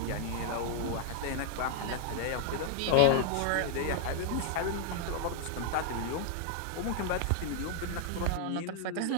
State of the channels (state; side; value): different; both; correlation 0.00